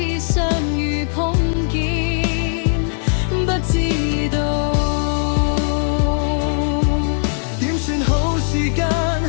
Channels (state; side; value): silent; right; 57 dB below the other